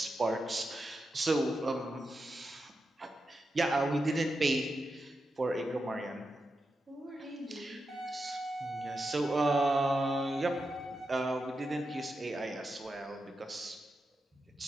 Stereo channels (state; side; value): normal; both; correlation 0.88